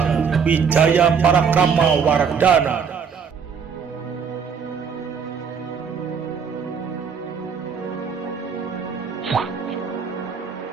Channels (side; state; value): left; quieter; 6.4 dB